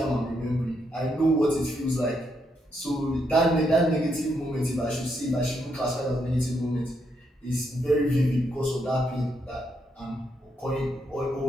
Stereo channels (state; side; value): normal; both; correlation 0.78